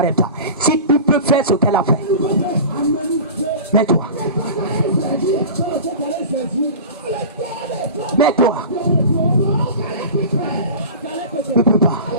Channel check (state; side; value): inverted; both; correlation -0.34